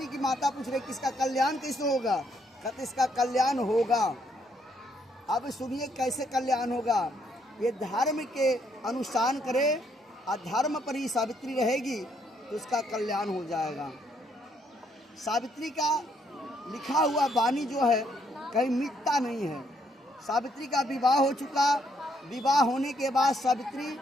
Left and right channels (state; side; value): normal; both; correlation 0.72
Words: की माता पूछ रही है कि इसका कल्याण कैसे होगा। कहते इसका कल्याण होगा। अब सुनिए कैसे कल्याण होगा। ये धर्म के अनुसार करे और धर्म पर ही सावित्री रहेगी तो उसका कल्याण हो जाएगा। सावित्री का लिखा हुआ वाणी जो है कहीं मिटता नहीं है। सावित्री का विवाह हो चुका, विवाह होने के बाद सावित्री